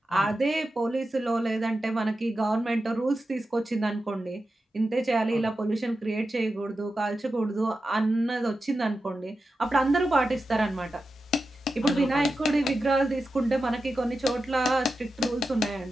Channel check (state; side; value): normal; both; correlation 0.91